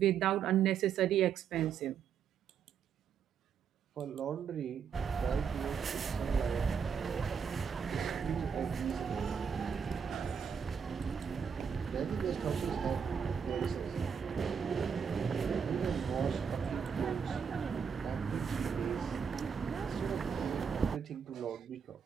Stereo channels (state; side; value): quieter; left; 6.9 dB